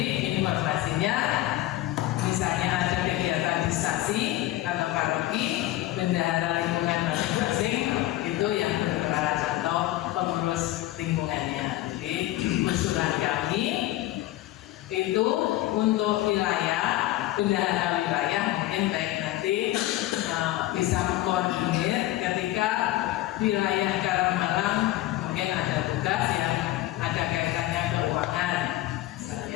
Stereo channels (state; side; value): quieter; right; 15.9 dB